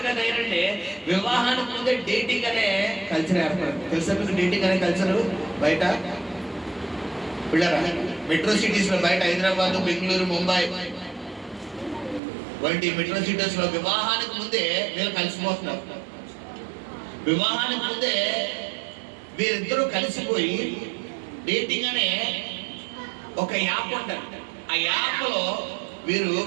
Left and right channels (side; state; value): left; drops out; at 12.2 s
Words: తయారంటే వివాహానికి ముందే డేటింగ్ అనే కల్చర్ ఏర్పడింది. తెలుసా మీకు డేటింగ్ అనే కల్చర్ బయట? పిల్లరా మెట్రో సిటీస్ లో బయట హైదరాబాద్, బెంగళూరు, ముంబై వంటి మెట్రో సిటీస్ లో వివాహానికి ముందే వీళ్ళు కలిసిపోతున్నారు. వివాహానికి ముందే వీరిద్దరూ కలిసిపోయి డేటింగ్ అనే ఒక యాప్ ఉంటుంది. ఆ యాప్ లో